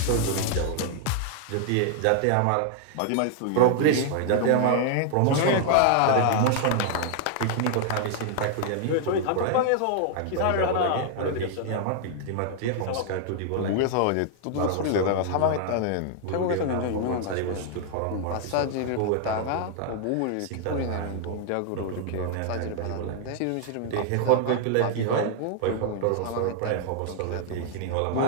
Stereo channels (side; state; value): both; different; correlation 0.00